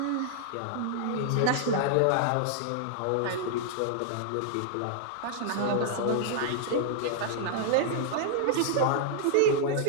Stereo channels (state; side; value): different; both; correlation -0.01